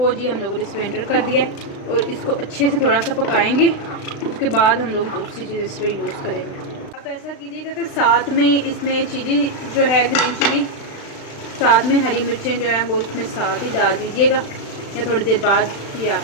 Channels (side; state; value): right; late; 36 ms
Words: जी, हम लोगों ने इसमें एंटर कर दिया और इसको अच्छे से थोड़ा सा पकाएंगे। उसके बाद हम लोग दूसरी चीज़ इस पर यूज़ करेंगे। आप ऐसा कीजिएगा कि साथ में इसमें चिली जो है, ग्रीन चिली, साथ में हरी मिर्चें जो हैं वो इसमें साथ ही डाल दीजिएगा, या थोड़ी देर बाद, ये